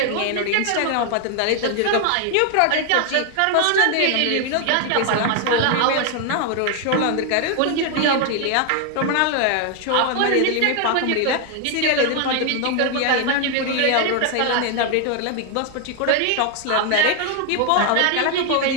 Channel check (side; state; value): both; different; correlation 0.00